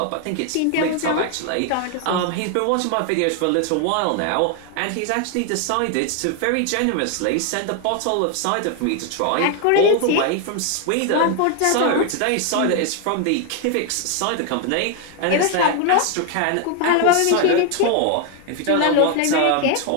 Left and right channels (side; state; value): both; different; correlation 0.01